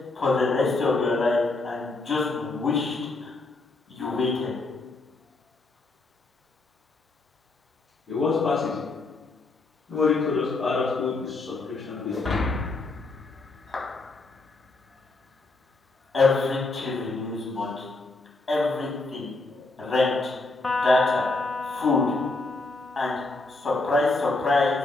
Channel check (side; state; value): right; quieter; 3.4 dB